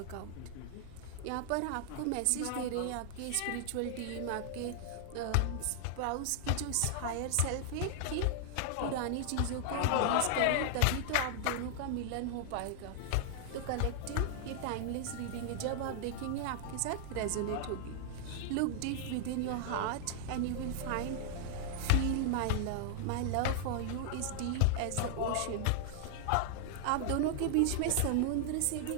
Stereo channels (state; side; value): different; both; correlation -0.01